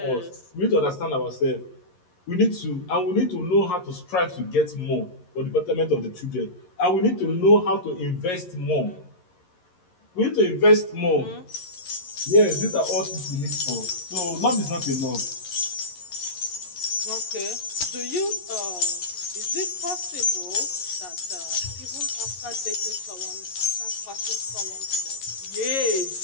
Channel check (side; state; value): right; late; 11 ms